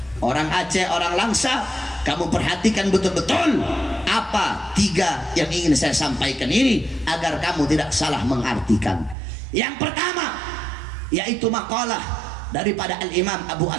Orang Aceh, orang Langsa, kamu perhatikan betul-betul apa 3 yang ingin saya sampaikan ini agar kamu tidak salah mengartikan. Yang pertama, yaitu makalah daripada Al-Imam Abu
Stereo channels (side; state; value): left; drops out; at 9.2 s